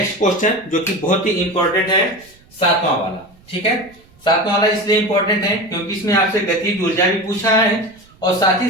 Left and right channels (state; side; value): noise; right; rumble, 28 dB below the sound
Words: क्वेश्चन जो कि बहुत ही इंपॉर्टेंट है, 7वां वाला। ठीक है, 7वां वाला इसलिए इंपॉर्टेंट है क्योंकि इसमें आपसे गतिज ऊर्जा भी पूछा है और साथ ही